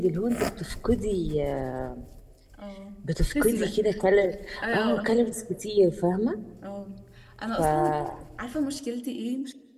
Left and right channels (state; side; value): identical; both; correlation 1.00